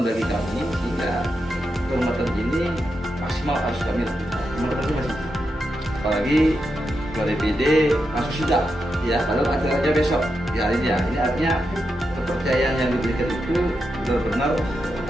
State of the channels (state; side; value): normal; both; correlation 0.86